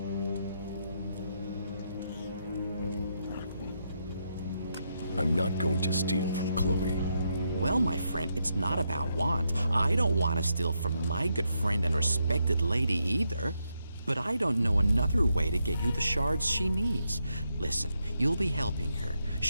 I'm not going to steal from Chloe. Well, my friend, it's not about want. I don't want to steal from my good friend and respected lady either. But I don't know another way to get you the shards she needs. Listen, you'll be helping her.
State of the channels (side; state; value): both; inverted; correlation -0.81